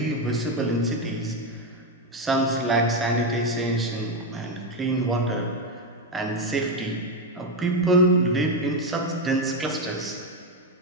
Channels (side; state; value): both; normal; correlation 0.09